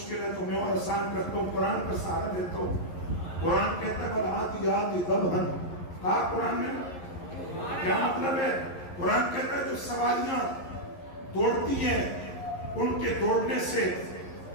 ہے تو میں اور آسان کرتا ہوں، قرآن پر سہارا لیتا ہوں۔ قرآن کہتا ہے وَالْعَادِيَاتِ ضَبْحًا، کہا قرآن نے کیا مطلب ہے؟ قرآن کہتا ہے جو سواریاں دوڑتی ہیں ان کے دوڑنے سے،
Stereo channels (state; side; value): late; right; 11 ms